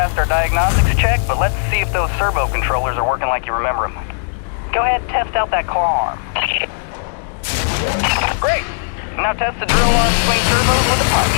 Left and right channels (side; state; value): right; silent; digital silence